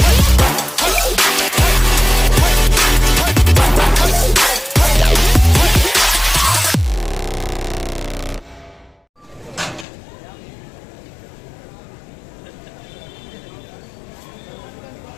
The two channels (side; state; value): right; drops out; at 9.9 s